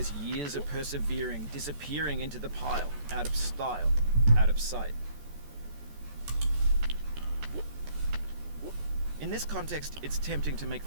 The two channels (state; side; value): late; left; 14 ms